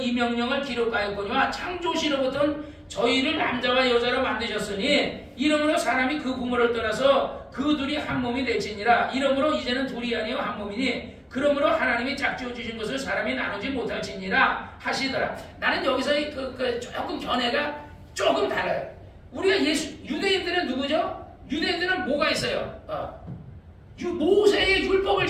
명령을 기록하였거니와 창조시로부터 저희를 남자와 여자로 만드셨으니 이러므로 사람이 그 부모를 떠나서 그 둘이 한 몸이 될지니라. 이러므로 이제는 둘이 아니요 한 몸이니 그러므로 하나님이 짝지어 주신 것을 사람이 나누지 못할지니라 하시더라. 나는 여기서 조금 견해가 조금 달라요. 우리가 유대인들은 누구죠? 유대인들은 뭐가 있어요? 모세의 율법을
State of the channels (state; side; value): identical; both; correlation 1.00